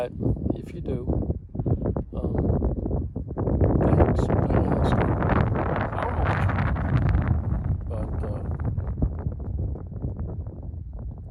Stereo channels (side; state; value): both; identical; correlation 1.00